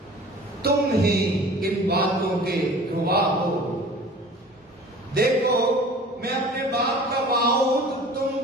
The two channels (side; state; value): both; normal; correlation 0.44